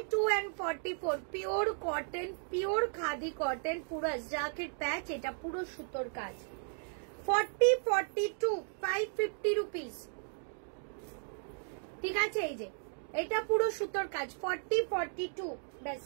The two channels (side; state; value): left; silent; 54 dB below the other